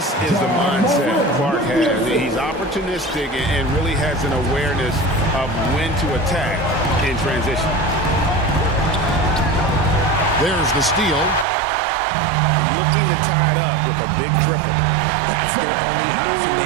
is the mindset Clark has. He's opportunistic and really has an awareness of when to attack in transition. There's the steal. Looking to tie it up with a big triple. That's their only option.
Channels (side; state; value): left; drops out; at 11.5 s